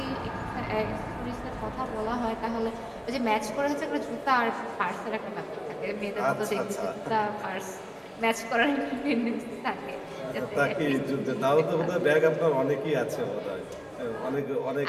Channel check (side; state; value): both; identical; correlation 1.00